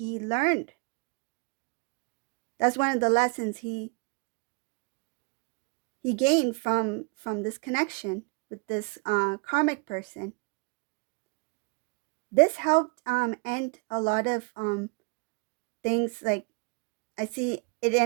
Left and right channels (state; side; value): quieter; left; 31.9 dB